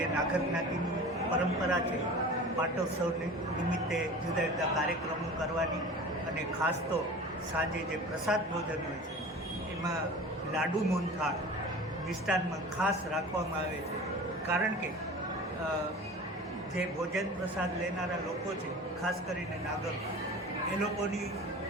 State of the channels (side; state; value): both; normal; correlation 0.38